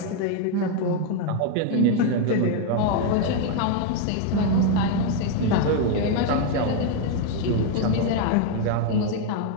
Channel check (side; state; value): both; different; correlation 0.00